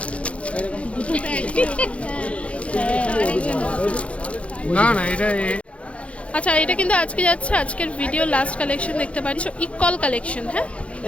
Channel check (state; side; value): late; right; 0.062 ms